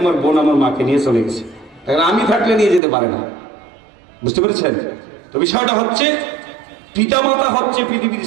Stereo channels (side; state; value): left; drops out; at 2.8 s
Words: আমার বোন আমার মাকে নিয়ে চলে গেছে, কারণ আমি থাকলে নিয়ে যেতে পারে না। বুঝতে পেরেছেন তো? বিষয়টা হচ্ছে পিতামাতা হচ্ছে পৃথিবীর